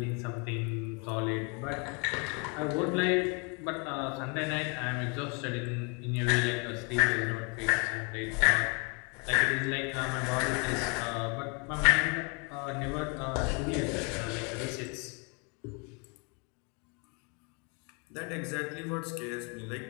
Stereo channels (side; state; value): right; quieter; 33.7 dB